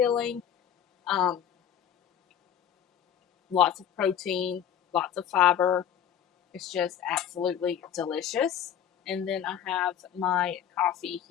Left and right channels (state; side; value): quieter; right; 9.5 dB